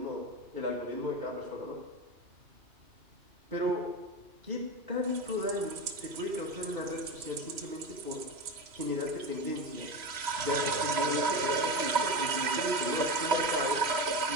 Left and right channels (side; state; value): left; late; 3.0 ms